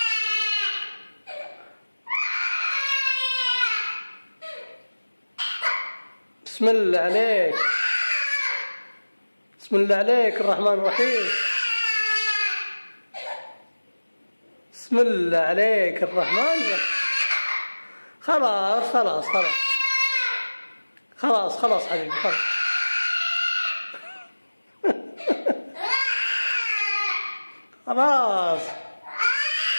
بسم الله عليك، بسم الله عليك الرحمن الرحيم. بسم الله عليك الرحمن الرحيم. خلاص خلاص خلاص خلاص خلاص حبيبي خلاص. خلاص.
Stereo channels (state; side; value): inverted; both; correlation -1.00